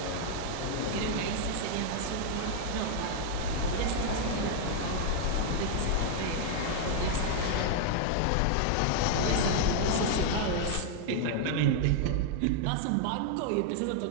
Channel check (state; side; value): different; both; correlation -0.01